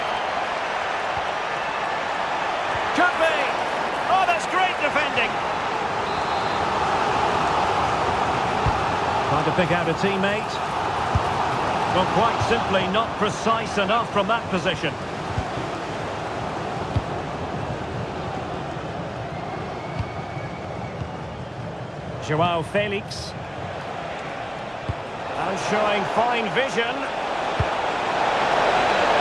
Could be. Oh, that's great defending. Trying to pick out a teammate. Well, quite simply not precise enough from that position. Joao Felix. And showing fine vision.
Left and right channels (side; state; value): both; identical; correlation 1.00